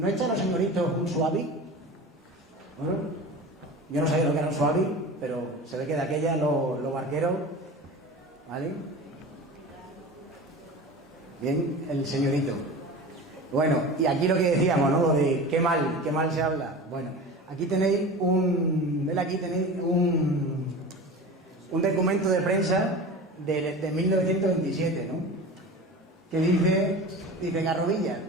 echan los señoritos un suavi? Bueno, yo no sabía lo que era un suavi, pero se ve que de aquella los barqueros, ¿vale? Bien, el señorito. Bueno, y aquí lo que decíamos, ¿no? Lo de qué mal se habla. Bueno, aquí tenéis un documento de prensa de 1927, ¿no? Que dice Garrovilla,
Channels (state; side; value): normal; both; correlation 0.33